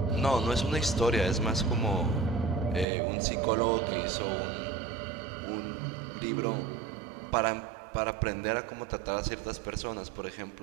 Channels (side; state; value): left; drops out; at 2.9 s